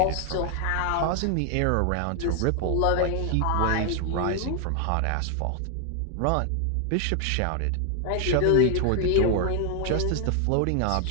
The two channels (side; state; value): both; different; correlation 0.00